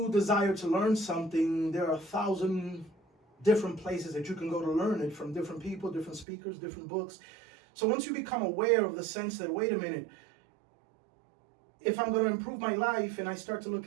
desire to learn something, there are 1,000 different places that you can go to learn it from different people, different speakers, different books. So once you become aware of the sense that, wait a minute, if I'm going to improve my life and I start to look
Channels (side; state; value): left; drops out; at 6.2 s